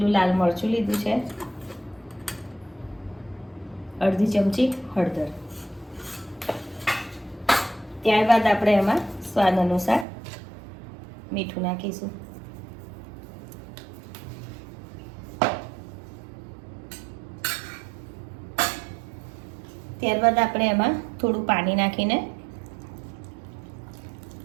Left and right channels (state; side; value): drops out; left; at 10.1 s